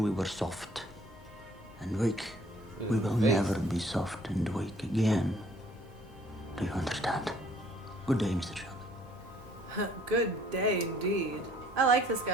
were soft and weak. We will never be soft and weak again. Do you understand? Good day, Mr. Shelby. Good day, indeed. I like this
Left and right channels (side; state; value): both; normal; correlation 0.59